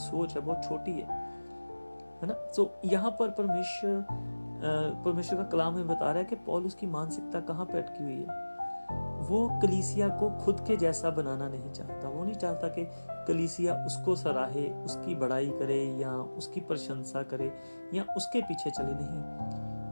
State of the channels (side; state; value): both; inverted; correlation -1.00